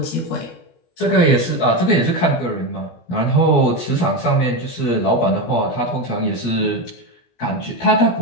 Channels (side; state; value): right; late; 17 ms